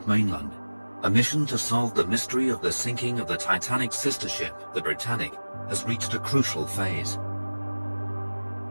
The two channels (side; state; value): both; inverted; correlation -1.00